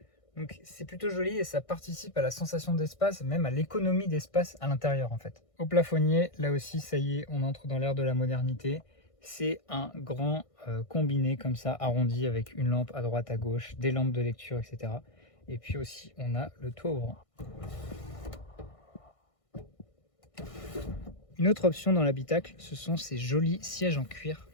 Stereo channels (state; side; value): late; right; 1.6 ms